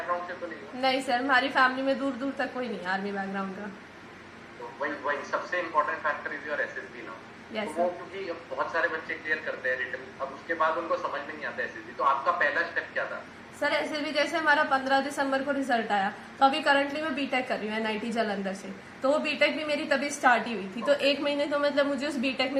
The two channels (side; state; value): both; identical; correlation 1.00